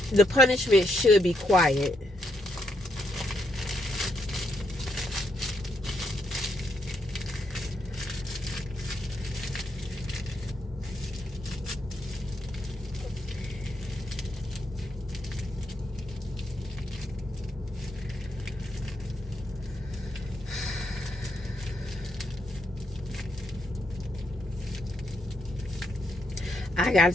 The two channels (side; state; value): both; normal; correlation 0.78